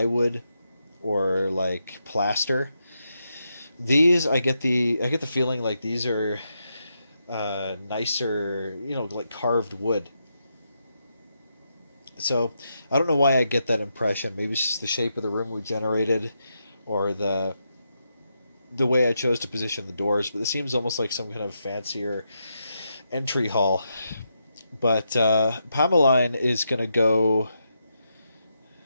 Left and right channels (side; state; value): both; inverted; correlation -0.83